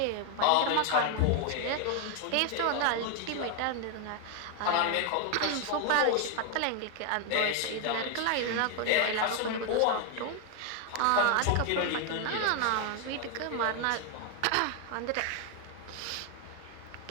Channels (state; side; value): different; both; correlation 0.01